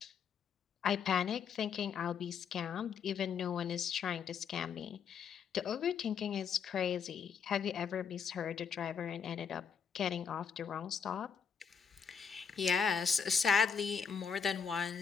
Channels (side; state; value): right; quieter; 6.7 dB